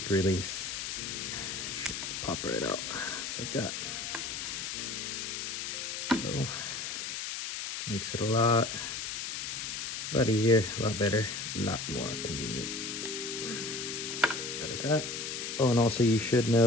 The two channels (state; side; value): noise; left; hiss, 4 dB below the sound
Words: release. Should pop right out just like that. So makes it a lot easier, a lot better, a lot more convenient. That is that. Oh, and also you should